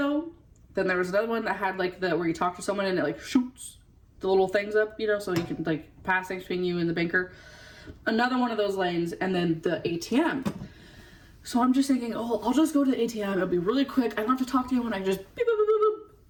then there was another one that had like where you talk to someone and it like shoots the little things up, you know, so you can like pass things between you and the banker. Another one of those lanes, and then the ATM. So I'm just thinking, oh, I'll just go to the ATM. It'll be really quick. I don't have to talk to anyone. I can just beep, boop, boop, boop, boop,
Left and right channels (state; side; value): identical; both; correlation 1.00